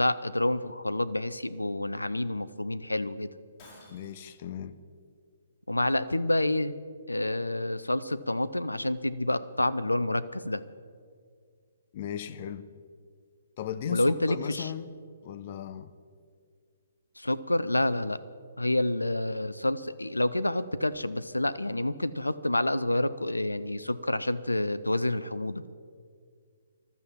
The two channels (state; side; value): inverted; both; correlation -0.95